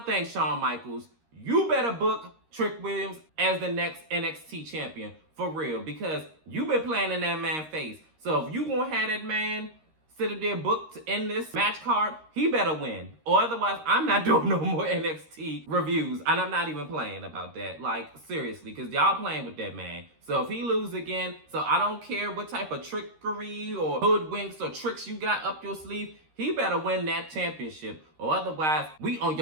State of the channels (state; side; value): late; left; 13 ms